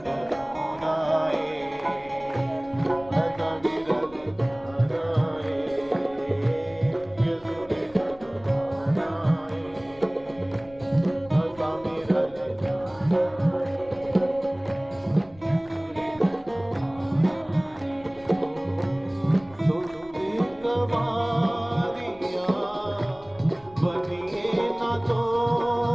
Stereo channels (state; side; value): noise; left; rumble, 24 dB below the sound